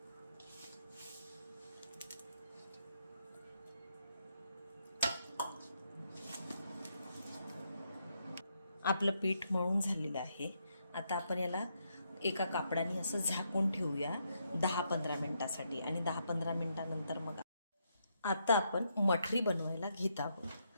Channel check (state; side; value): inverted; both; correlation -0.78